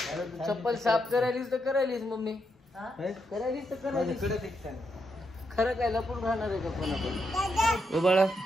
चप्पल साफ करायलीस तर करायलीस मम्मी, करायलीस तर करायलीस. खरं काय लपून राहणार आहे का पण आपण? बाळा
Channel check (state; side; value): normal; both; correlation 0.81